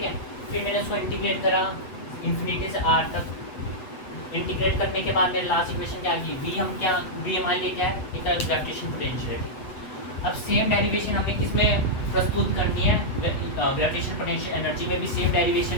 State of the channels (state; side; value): late; right; 8.0 ms